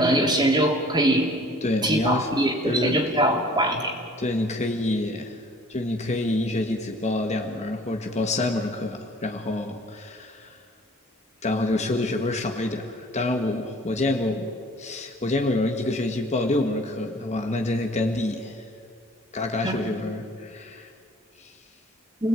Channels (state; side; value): normal; both; correlation 0.51